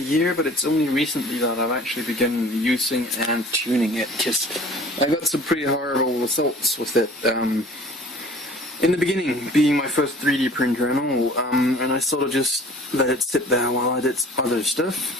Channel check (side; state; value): both; normal; correlation 0.48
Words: but it's only recently that I've actually begun using and tuning it, because I got some pretty horrible results with it. In the beginning, being my first 3D printer and all, and I sort of just let it sit there while I did other stuff.